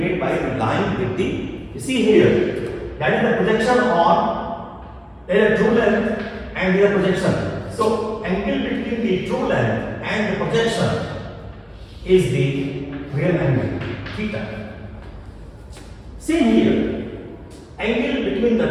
by the line with the, you see here, that is the projection on a true length and the projection. So angle between the true length and the projection is the real angle, theta. Same here, angle between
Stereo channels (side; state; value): both; identical; correlation 1.00